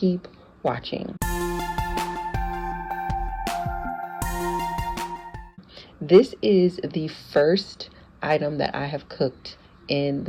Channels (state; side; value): identical; both; correlation 1.00